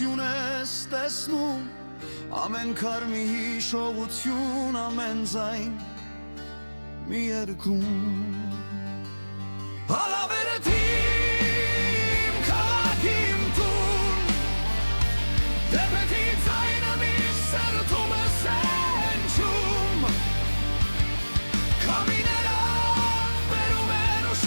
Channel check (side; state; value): both; inverted; correlation -1.00